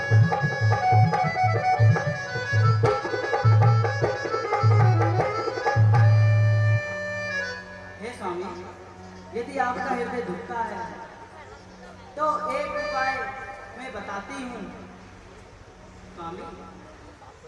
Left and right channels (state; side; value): identical; both; correlation 1.00